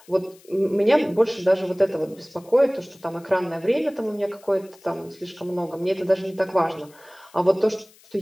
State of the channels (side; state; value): left; noise; hiss, 27 dB below the sound